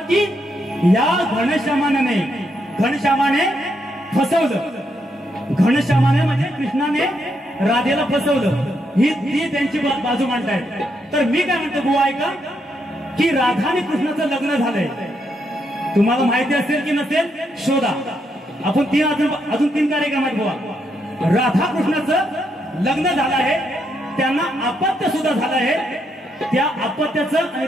की या घनश्यामाने फसवलं. घनश्यामाने म्हणजे कृष्णाने राधेला फसवलं, ही त्यांची बाजू मांडतायत. तर मी काय म्हणतो बुवा ऐका, की राधा आणि कृष्णाचं लग्न झालंय. तुम्हाला माहिती असेल की नसेल शोधा. आपण अजून 3 कार्यक्रम आहेत बुवा. राधा कृष्णाचं लग्न झालं आहे, त्यांना अपत्य सुद्धा झालं आहे. त्या अपत्याचं आणि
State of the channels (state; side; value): normal; both; correlation 0.78